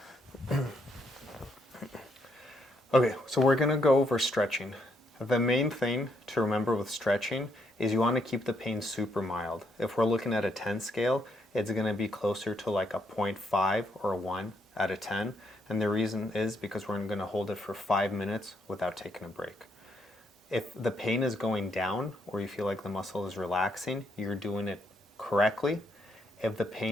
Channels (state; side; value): normal; both; correlation 0.75